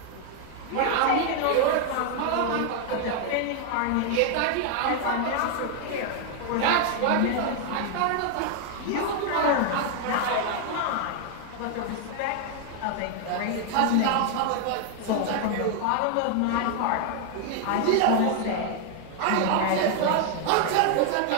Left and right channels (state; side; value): different; both; correlation 0.00